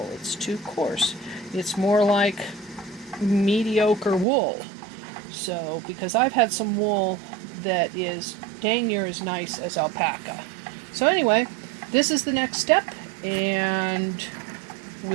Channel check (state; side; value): drops out; left; at 4.2 s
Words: It's too coarse. It's more like mediocre wool. So, because I've had some wool that is dang near as nice as alpaca. So anyway, this is the next step, and